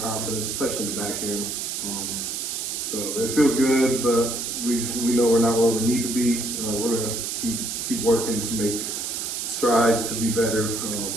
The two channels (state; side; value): noise; right; hiss, 3 dB below the sound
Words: confidence, especially in the back end. So it feels good, but we know we're not where we need to be. We're going to keep working to make strides to be better